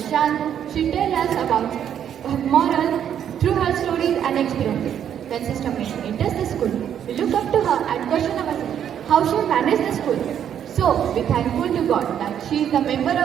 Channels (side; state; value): left; quieter; 9.3 dB